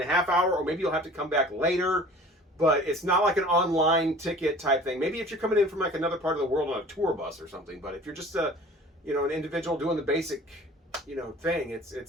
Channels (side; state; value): both; normal; correlation 0.45